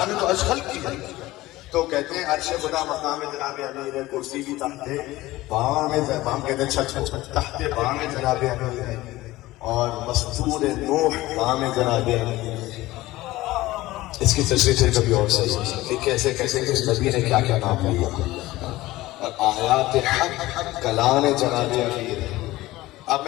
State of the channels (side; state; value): right; quieter; 17.9 dB